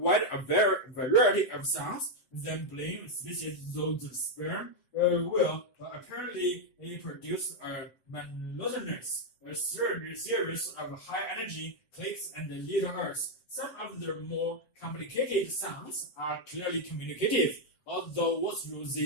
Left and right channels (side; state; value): right; late; 7.6 ms